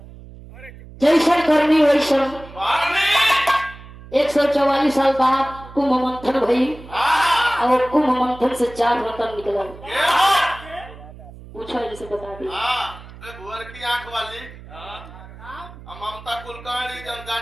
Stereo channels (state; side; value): noise; right; hum, 17 dB below the sound